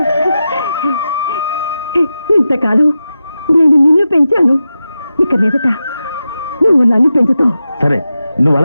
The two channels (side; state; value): both; inverted; correlation -0.91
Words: ఇంతకాలం నేను నిన్ను పెంచాను, ఇక మీదట నువ్వు నన్ను పెంచుతావు. సరే నువ్వు